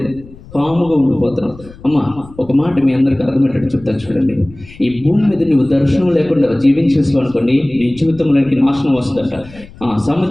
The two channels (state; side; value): noise; left; rumble, 20 dB below the sound